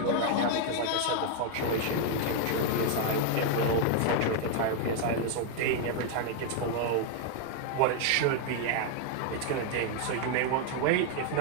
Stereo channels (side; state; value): both; different; correlation 0.00